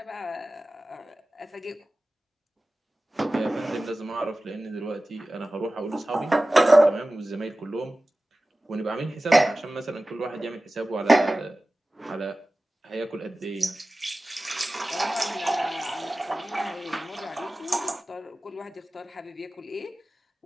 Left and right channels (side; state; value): both; normal; correlation 0.96